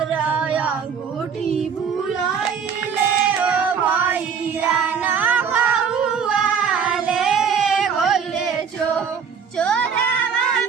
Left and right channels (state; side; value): quieter; left; 6.7 dB